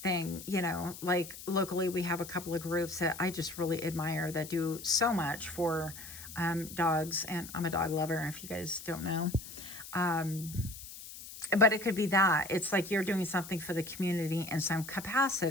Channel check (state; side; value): noise; left; hiss, 13 dB below the sound